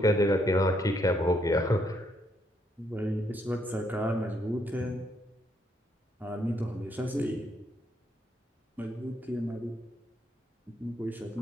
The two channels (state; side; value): normal; both; correlation 0.74